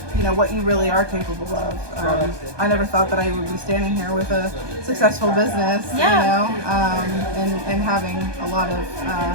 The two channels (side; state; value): left; late; 1.2 ms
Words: what you really are capable of. I never thought that I would be standing here with a successful business, and having a lot of